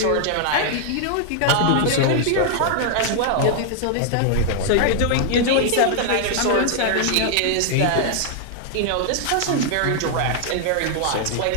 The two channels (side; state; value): both; different; correlation -0.01